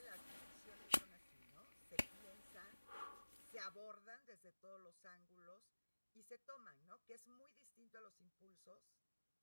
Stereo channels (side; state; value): both; inverted; correlation -1.00